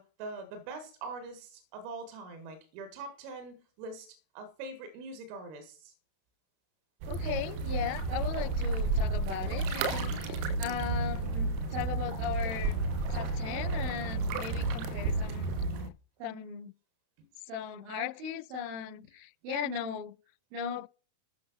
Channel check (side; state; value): left; late; 32 ms